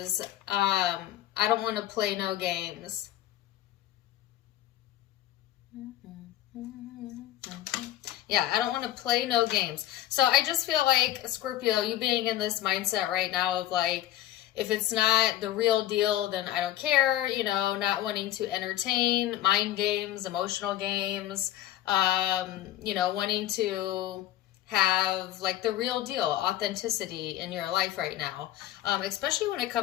I don't want to play no games. Yeah, I don't want to play no games. So I just feel like, Scorpio, you being in this mindset right now of like, if it's not the real deal, then I don't care, not wanting to entertain, mind games, emotional games, wanting to have like the real deal, authenticity in your life right now, especially when it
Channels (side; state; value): right; quieter; 13.5 dB